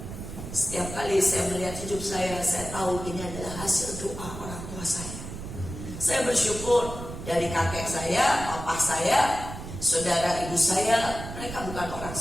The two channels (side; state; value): right; noise; rumble, 9 dB below the sound